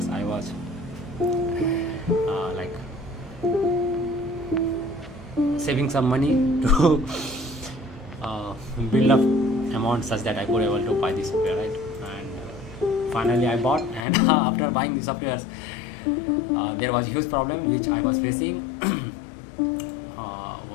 I was like saving some money to build up amount such that I could able to buy the software, right? And finally I bought, and after buying the softwares, there was a huge problem which I was facing.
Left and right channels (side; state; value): right; drops out; at 14.1 s